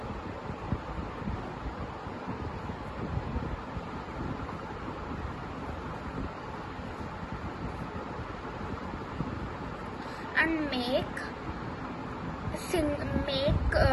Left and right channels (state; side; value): identical; both; correlation 1.00